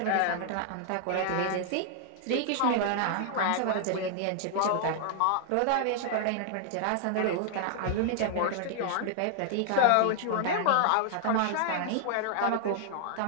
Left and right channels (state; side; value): different; both; correlation -0.01